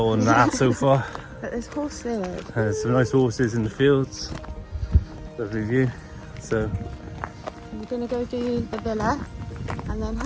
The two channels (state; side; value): identical; both; correlation 1.00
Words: and a half so far. But there's horses. There's some nice horses in the fields. Lovely view. So we're going to go do the villa, and then